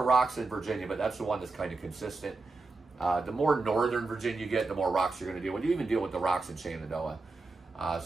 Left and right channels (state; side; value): quieter; left; 3.6 dB